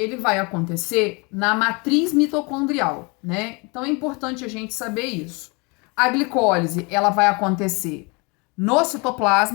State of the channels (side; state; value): right; quieter; 29.7 dB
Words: vai acontecer na matriz mitocondrial, né? Então, é importante a gente saber isso. A glicólise, ela vai acontecer no